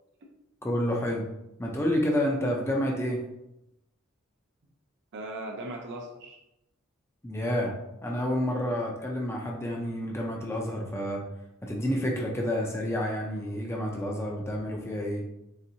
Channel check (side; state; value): both; normal; correlation 0.69